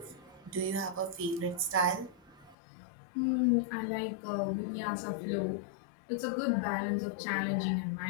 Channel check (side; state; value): right; drops out; at 2.6 s